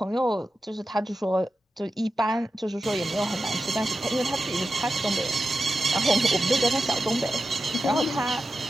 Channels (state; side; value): normal; both; correlation 0.92